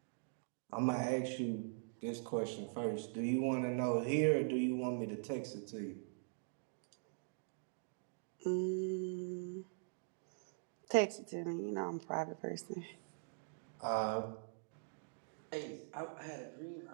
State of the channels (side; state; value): left; silent; digital silence